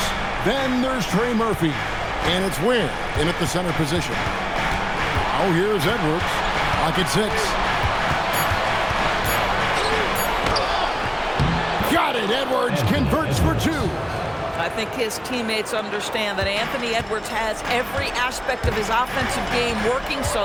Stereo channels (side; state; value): both; identical; correlation 1.00